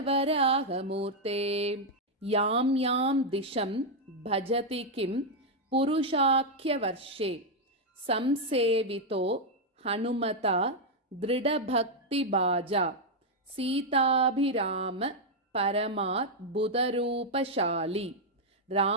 यां यां दिशं भजति किं पुरुषाख्यवर्षे संसेवितो हनुमता दृढभक्तिबाजा सीताभिराम परमात् बुधरूपशाली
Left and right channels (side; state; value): both; normal; correlation -0.01